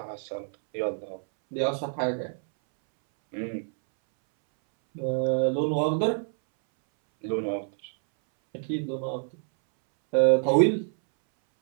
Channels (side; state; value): left; silent; 60 dB below the other